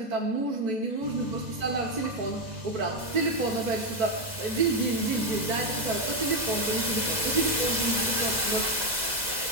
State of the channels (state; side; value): late; left; 2.0 ms